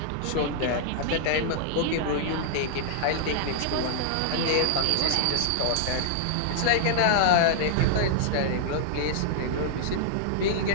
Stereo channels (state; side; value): different; both; correlation -0.01